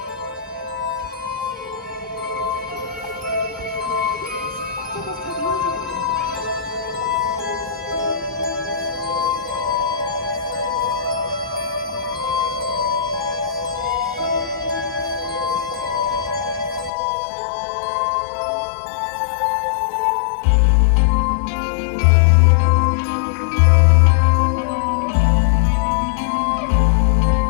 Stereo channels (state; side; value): drops out; right; at 16.9 s